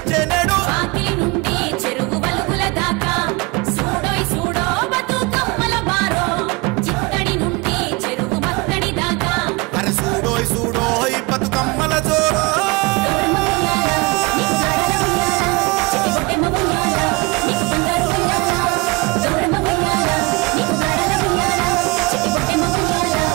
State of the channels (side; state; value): left; quieter; 26.1 dB